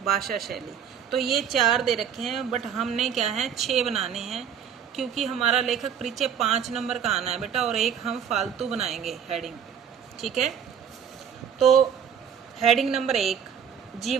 भाषा शैली। तो ये 4 दे रखे हैं, बट हमने क्या है 6 बनाने हैं, क्योंकि हमारा लेखक परिचय 5 नंबर का आना है बेटा, और एक हम फालतू बनाएंगे हेडिंग। ठीक है, तो हेडिंग नंबर 1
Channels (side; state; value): left; quieter; 8.0 dB